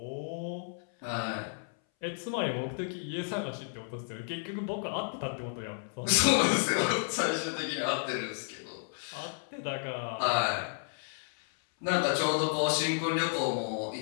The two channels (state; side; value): silent; right; 56 dB below the other